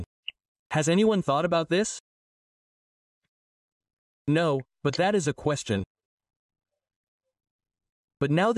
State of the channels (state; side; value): identical; both; correlation 1.00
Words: Has anyone thought about this? No, but that is a question. But now